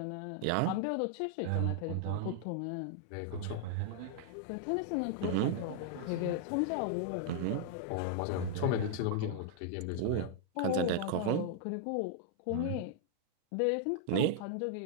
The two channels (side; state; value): both; different; correlation -0.01